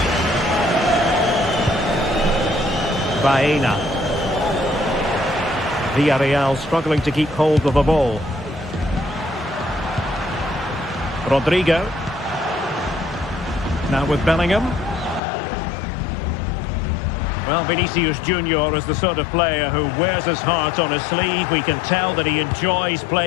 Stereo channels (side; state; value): right; drops out; at 15.2 s